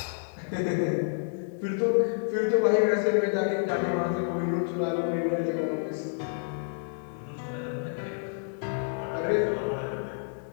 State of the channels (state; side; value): silent; right; digital silence